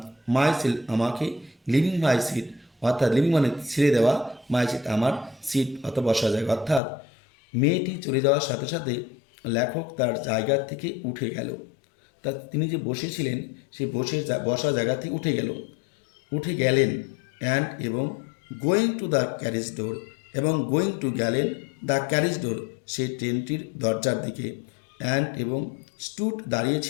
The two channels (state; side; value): drops out; right; at 6.8 s